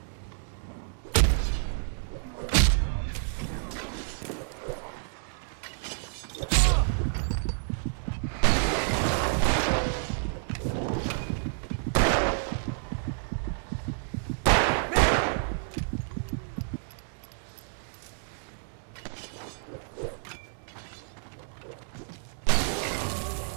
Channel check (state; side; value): silent; left; 58 dB below the other